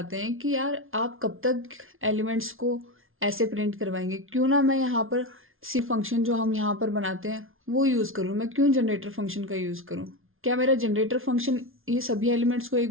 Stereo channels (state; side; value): late; left; 0.60 ms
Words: हैं कि यार आप कब तक एलिमेंट्स को ऐसे प्रिंट करवाएंगे, क्यों ना मैं यहाँ पर सी फंक्शन जो हम यहाँ पर बनाते हैं वो यूज़ करूँ। मैं क्यों जनरेटर फंक्शन का यूज़ करूँ? क्या मेरा जनरेटर फंक्शन ये सभी एलिमेंट्स को